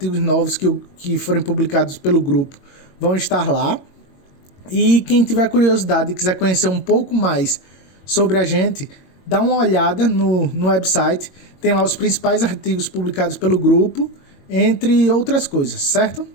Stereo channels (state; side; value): late; right; 22 ms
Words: novos que forem publicados pelo grupo vão estar lá. E quem tiver curiosidade e quiser conhecer um pouco mais sobre a gente, dá uma olhada no website, tem lá os principais artigos publicados pelo grupo, entre outras coisas, certo?